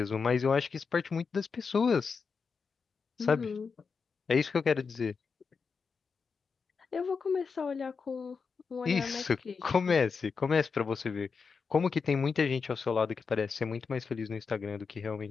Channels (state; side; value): quieter; right; 5.3 dB